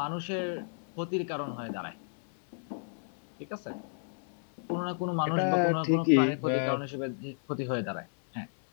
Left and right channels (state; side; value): silent; right; 56 dB below the other